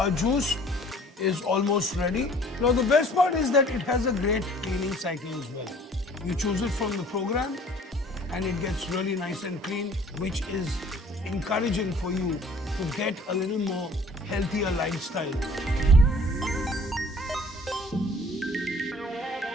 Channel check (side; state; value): both; normal; correlation 0.53